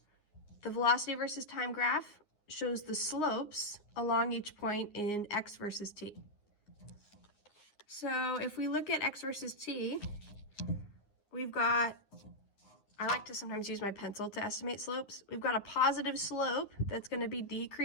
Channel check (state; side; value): late; right; 9.7 ms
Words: the velocity versus time graph shows the slopes along each point in x versus t. So if we look at x versus t, I like to sometimes use my pencil to estimate slopes. We've got a positive slope that's going to be